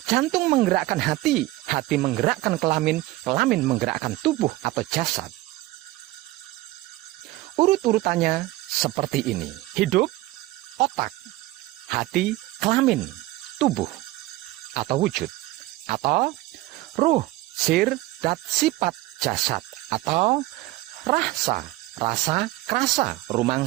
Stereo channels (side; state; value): left; quieter; 18.2 dB